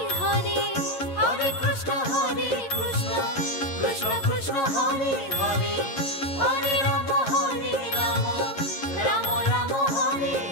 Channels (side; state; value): right; late; 11 ms